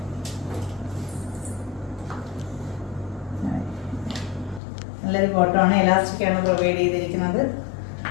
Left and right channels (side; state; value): right; drops out; at 4.6 s